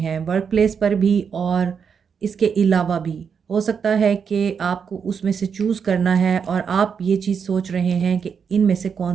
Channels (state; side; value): quieter; left; 6.6 dB